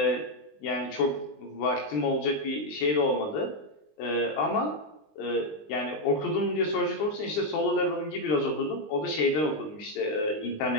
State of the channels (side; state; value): right; late; 20 ms